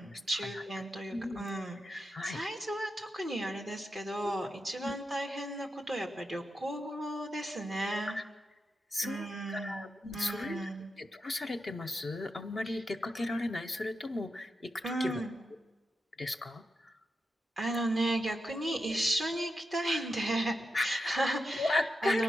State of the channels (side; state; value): both; normal; correlation 0.87